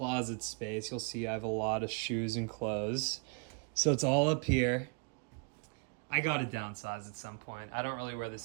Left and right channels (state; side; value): quieter; left; 36.4 dB